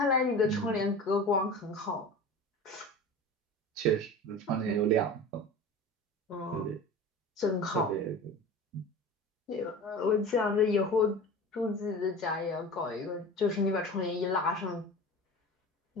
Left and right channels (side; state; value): both; normal; correlation 0.34